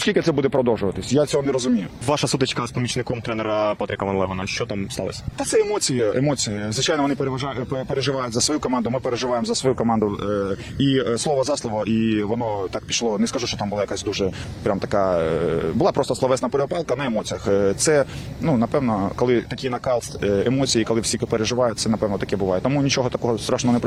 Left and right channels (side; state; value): both; identical; correlation 1.00